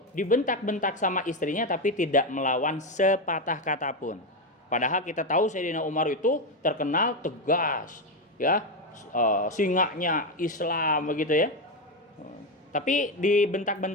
dibentak-bentak sama istrinya tapi tidak melawan sepatah kata pun. Padahal kita tahu Sayyidina Umar itu terkenal tegas, ya, singanya Islam begitu ya. Tapi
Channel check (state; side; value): normal; both; correlation 0.10